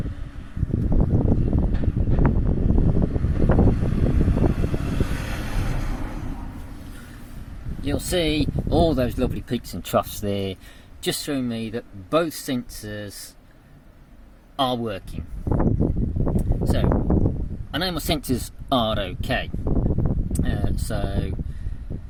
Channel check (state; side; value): identical; both; correlation 1.00